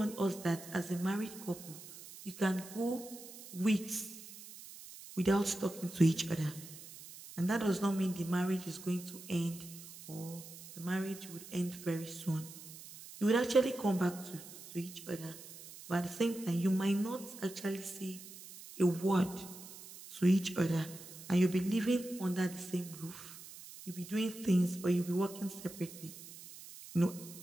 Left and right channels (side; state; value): right; noise; hiss, 15 dB below the sound